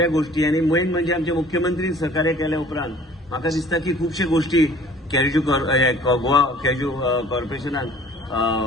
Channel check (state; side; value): normal; both; correlation 0.51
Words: गोष्टी आणि मेन म्हणजे आमचे मुख्यमंत्री सहकार्य केल्या उपरांत म्हाका दिसता की खुबशे गोष्टी गोवा कॅज्यू कॉर्पोरेशनान